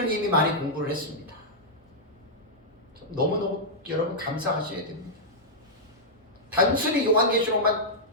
이미 많이 공부를 했습니다. 너무너무 여러분 감사하셔야 됩니다. 단순히 요한계시록만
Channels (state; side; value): normal; both; correlation -0.09